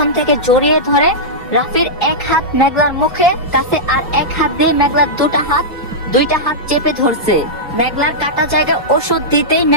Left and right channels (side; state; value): both; normal; correlation -0.11